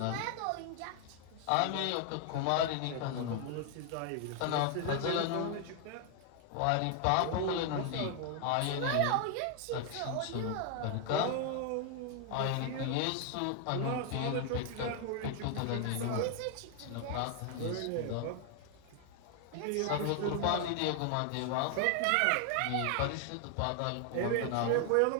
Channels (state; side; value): different; both; correlation 0.00